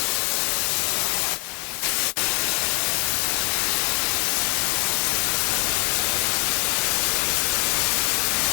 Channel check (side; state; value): right; quieter; 35.9 dB